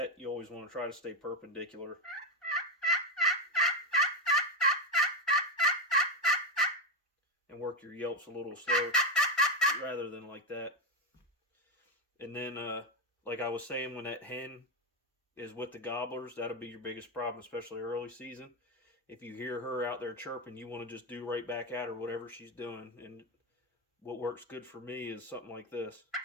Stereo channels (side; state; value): both; normal; correlation 0.09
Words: You always want to try to stay perpendicular. And work your yelps a little slow rather than like that. And then, like I was saying, when that hen is with the gobblers, that'll be your biggest problem, especially early season. If you hear her out there chirping, you want to just do right back at her, whatever she's doing. And what works good for me is something like this.